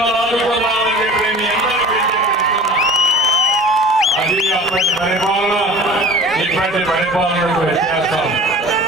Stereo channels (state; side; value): normal; both; correlation 0.41